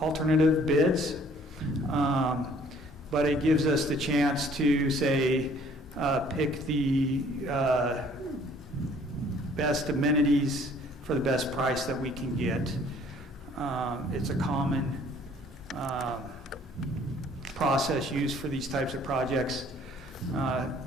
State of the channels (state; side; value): normal; both; correlation 0.58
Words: alternative bids, but it gives us the chance to say, pick the best amenities for the best price that we can get. It's a common process used for these types of projects.